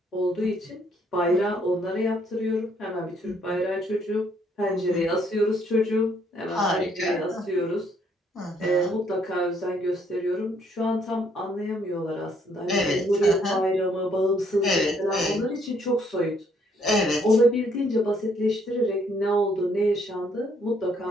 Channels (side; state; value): both; normal; correlation 0.68